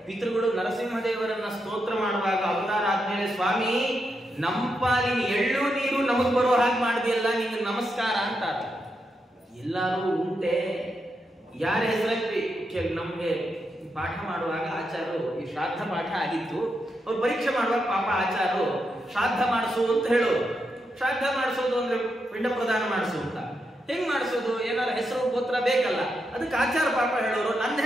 ಪಿತೃಗಳು ನರಸಿಂಹದೇವರನ್ನ ಸ್ತೋತ್ರ ಮಾಡುವಾಗ ಅವತಾರ ಆದ್ಮೇಲೆ, ಸ್ವಾಮಿ ನಮ್ಮ ಪಾಲಿನ ಎಳ್ಳು ನೀರು ನಮಗ್ ಬರೋ ಹಾಗೆ ಮಾಡಿದೆಯಲ್ಲ, ನಿಮ್ಗೆ ನಮಸ್ಕಾರ ಅಂತಾರೆ. ಎಲ್ಲರೂ ಉಂಟೆ ಯಾರ ಹೆಸರಲ್ಲಿ ನಮ್ಗೆ ಪಾಠ ಮಾಡುವಾಗ ಆಚಾರ್ಯರು ಈ ಶ್ರಾದ್ದ ಪಾಠ ಆಗಿತ್ತು. ಅವ್ರು ಪರೀಕ್ಷೆ ಮಾಡುವಾಗ ಪಾಪ ಆಚಾರ್ಯರು ಶ್ರಾದ್ದ ಮಾಡಿಸು ಅಂತ ಹೇಳೋರು. ಶ್ರಾದ್ದ ಮಾಡಿಸೋದು ಅಂದ್ರೆ ಪಿಂಡ ಪ್ರದಾನ ಮಾಡಿಸು ಅಂತ. ಹೆಂಗ್ ಮಾಡಿಸೋದು? ಏನಾರ ಹೆಸರು ಗೋತ್ರ ಬೇಕಲ್ಲ. ಅದಕ್ಕೆ ಆಚಾರ ಪಾಪ ಹೇಳೋರು ನನ್ನ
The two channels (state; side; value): normal; both; correlation 0.84